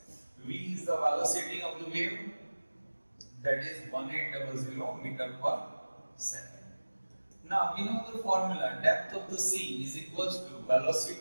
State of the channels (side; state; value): both; inverted; correlation -1.00